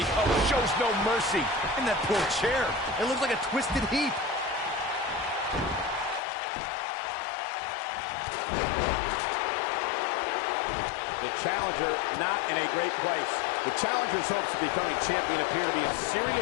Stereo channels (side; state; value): right; drops out; at 6.2 s